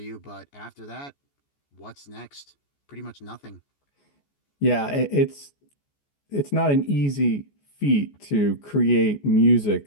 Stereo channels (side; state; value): right; late; 14 ms